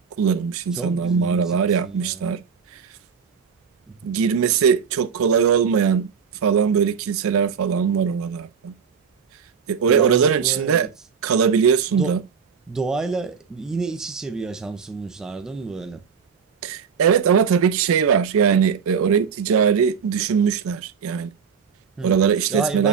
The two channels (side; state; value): left; quieter; 6.6 dB